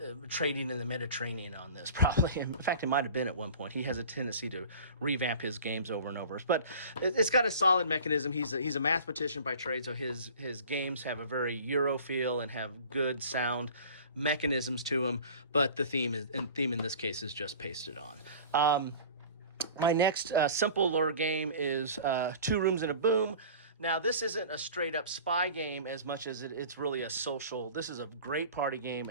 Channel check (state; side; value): inverted; both; correlation -0.42